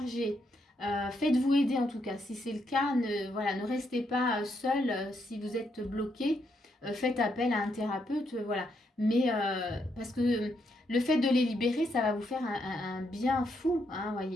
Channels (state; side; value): normal; both; correlation 0.77